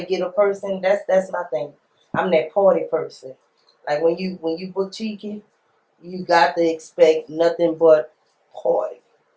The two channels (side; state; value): both; identical; correlation 1.00